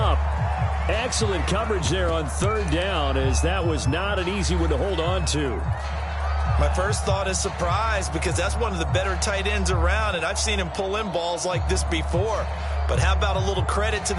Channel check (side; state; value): both; identical; correlation 1.00